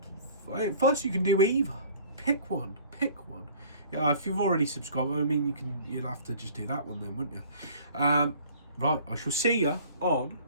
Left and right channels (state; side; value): inverted; both; correlation -0.50